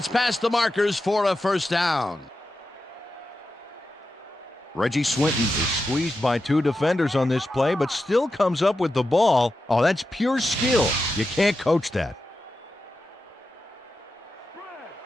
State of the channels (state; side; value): normal; both; correlation 0.90